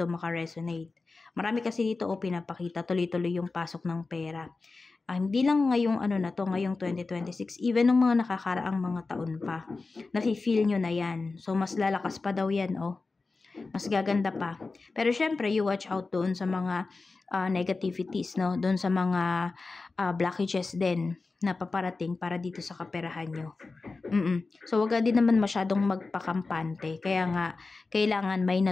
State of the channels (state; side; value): quieter; right; 3.8 dB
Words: makaresonate. Marami kasi dito pinapakita tuloy-tuloy yung pasok ng pera. Hindi lang ngayong ngayong 2026, even ng mga nakakaraang mga taon pa, nafe-feel nyo na yan. So, mas lalakas pa daw yan, mas gaganda pa. Pero syempre, you watch out doon sa mga negativities, no? Doon sa mga blockages din na paparating para dito sa kaperahan nyo. So, wag din naman masyadong magpakampante. Kaya nga, kailangan may